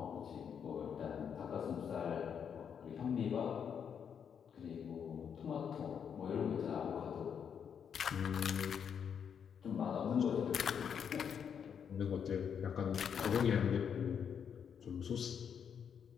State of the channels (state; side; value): quieter; right; 7.6 dB